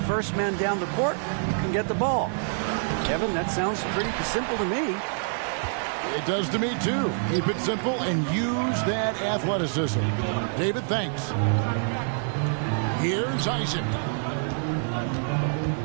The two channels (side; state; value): left; silent; 61 dB below the other